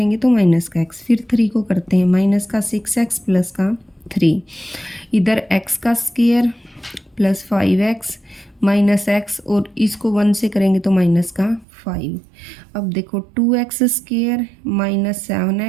तो माइनस का x, फिर 3 को करते हैं माइनस का 6x प्लस का 3, इधर x का square plus 5x minus x, और इसको 1 से करेंगे तो माइनस का 5। अब देखो 2x square minus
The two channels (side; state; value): left; drops out; at 11.7 s